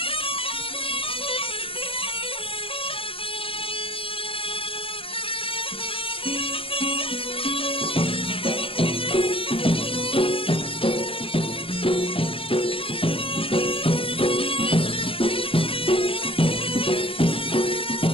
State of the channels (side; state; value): right; late; 0.26 ms